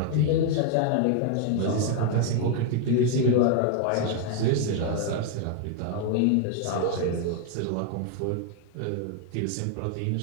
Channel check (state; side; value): different; both; correlation 0.00